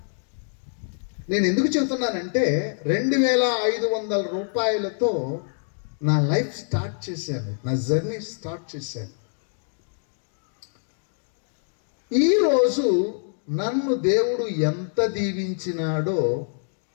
నేను ఎందుకు చెబుతున్నానంటే 2500 రూపాయలతో నా లైఫ్ స్టార్ట్ చేశాను, నా జర్నీ స్టార్ట్ చేశాను. ఈరోజు నన్ను దేవుడు ఎంత దీవించినాడో,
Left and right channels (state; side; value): silent; right; digital silence